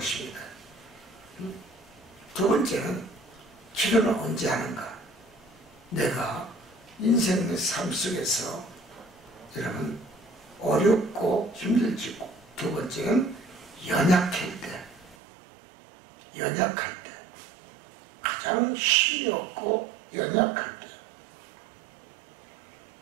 두 번째는 기도는 언제 하는가? 내가 인생의 삶 속에서 여러분 어렵고 힘들지고 두 번째는 연약할 때 가장 힘이 없고 연약할 때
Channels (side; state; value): left; drops out; at 15.2 s